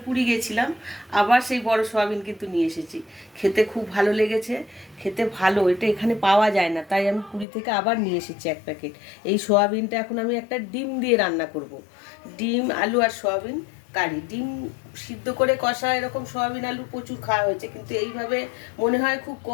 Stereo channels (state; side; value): drops out; right; at 7.5 s